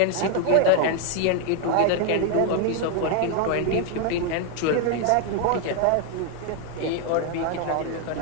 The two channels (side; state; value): both; different; correlation 0.01